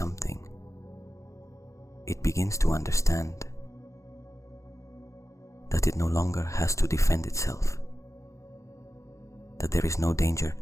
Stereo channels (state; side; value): late; right; 0.15 ms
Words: It begins to understand that it no longer has to defend itself, that there is no danger